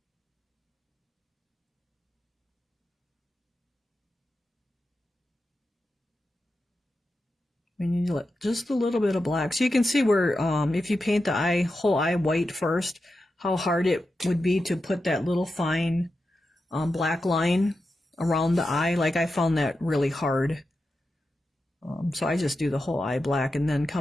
We need to let just a little bit of black. So you can see where, if you paint the whole eye white first, how hard it would be to put that little fine black line around the eye. Like, I found that really hard. So I just do the whole eye black and then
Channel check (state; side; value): normal; both; correlation 0.90